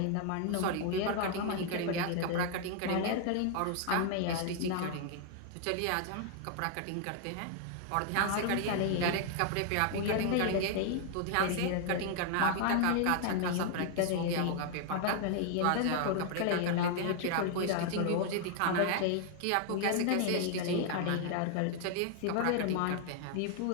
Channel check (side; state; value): both; different; correlation 0.00